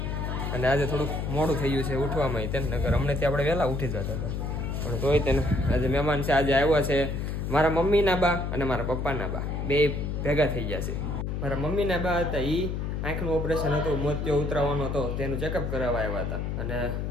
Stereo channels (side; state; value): left; noise; hum, 2 dB below the sound